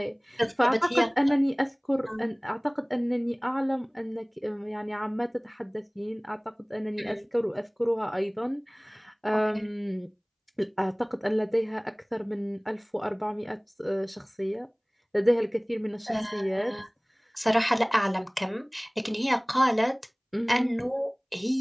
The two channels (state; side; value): identical; both; correlation 1.00